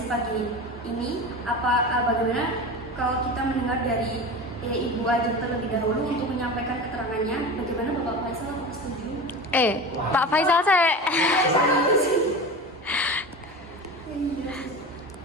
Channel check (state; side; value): normal; both; correlation 0.30